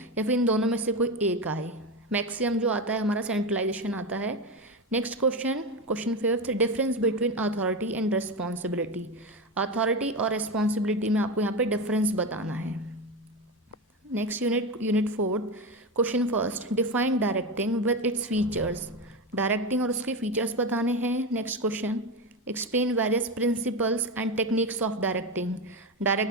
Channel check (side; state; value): both; normal; correlation 0.17